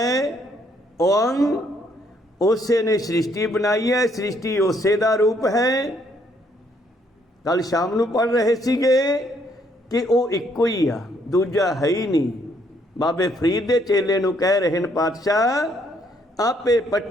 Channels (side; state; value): both; normal; correlation 0.69